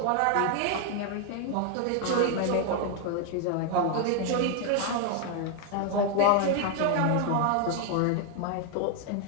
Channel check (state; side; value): different; both; correlation 0.00